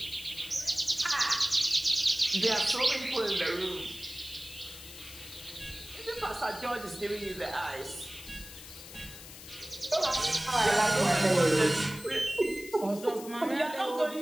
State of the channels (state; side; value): noise; left; hiss, 15 dB below the sound